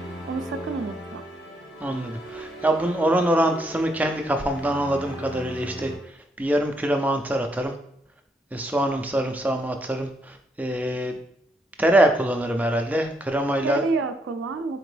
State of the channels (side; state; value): both; normal; correlation 0.75